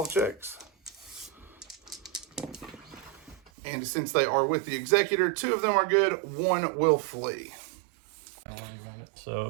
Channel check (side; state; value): left; drops out; at 3.5 s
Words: checks. And since they are with the executor, 2 of them are good, 1 will flee. So